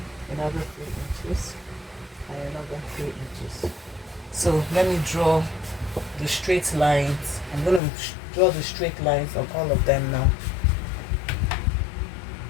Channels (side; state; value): right; drops out; at 7.8 s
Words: another 3 inches, and another 3 inches. So let me draw the straight lines. I'm going to draw the straight lines on all of them now.